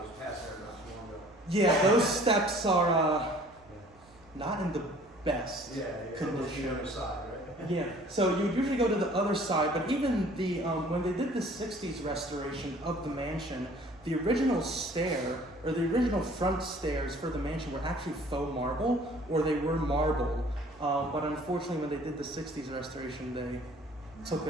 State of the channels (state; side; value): normal; both; correlation 0.53